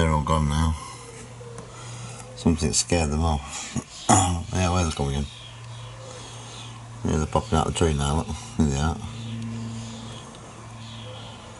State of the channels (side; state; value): both; identical; correlation 1.00